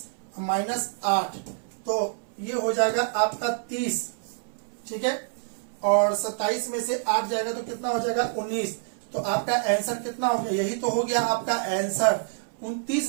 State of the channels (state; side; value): silent; left; 60 dB below the other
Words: -8, तो ये हो जाएगा आपका 30। ठीक है, और 27 में से 8 जाएगा तो कितना हो जाएगा 19। तो आपका आंसर कितना हो गया, यही तो हो गया आपका आंसर